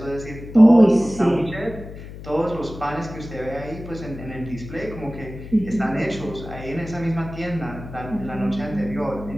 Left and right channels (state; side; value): noise; left; hum, 13 dB below the sound